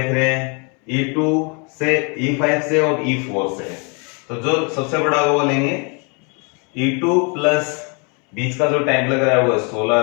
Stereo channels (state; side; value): quieter; right; 34.2 dB